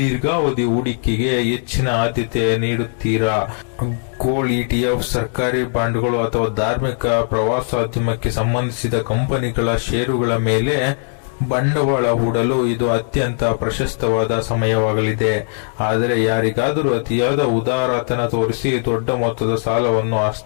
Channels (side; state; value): right; silent; digital silence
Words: ಹೂಡಿಕೆಗೆ ಹೆಚ್ಚಿನ ಆದ್ಯತೆ ನೀಡುತ್ತೀರಾ. ಗೋಲ್ಡ್, ETF, ಸರ್ಕಾರಿ ಬಾಂಡ್ಗಳು ಅಥವಾ ಧಾರ್ಮಿಕ ಪ್ರವಾಸೋದ್ಯಮಕ್ಕೆ ಸಂಬಂಧಿಸಿದ ಕಂಪನಿಗಳ ಷೇರುಗಳ ಮೇಲೆ ಬಂಡವಾಳ ಹೂಡಲು ಇದು ಅತ್ಯಂತ ಪ್ರಶಸ್ತವಾದ ಸಮಯವಾಗಲಿದೆ. ಆದರೆ ಯಾರಿಗಾದರೂ ಅತಿಯಾದ ಉದಾರತನ ತೋರಿಸಿ ದೊಡ್ಡ ಮೊತ್ತದ ಸಾಲವನ್ನು